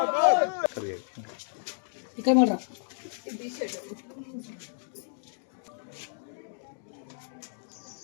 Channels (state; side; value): silent; right; digital silence